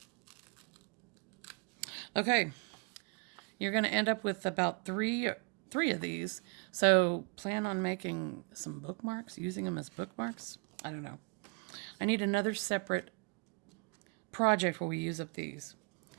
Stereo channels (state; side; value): quieter; left; 34.2 dB